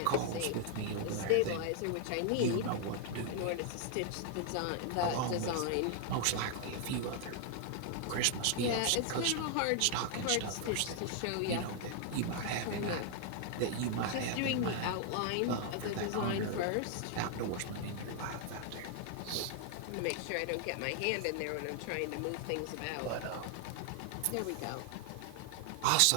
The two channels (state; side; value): different; both; correlation 0.00